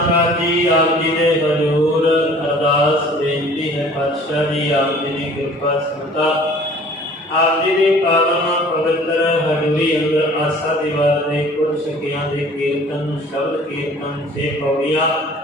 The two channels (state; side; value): normal; both; correlation 0.50